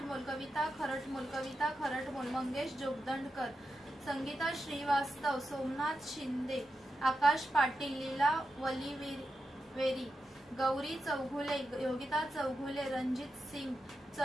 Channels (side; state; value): both; normal; correlation 0.88